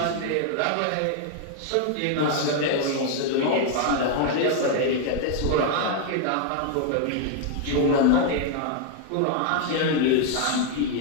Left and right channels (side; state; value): both; different; correlation 0.00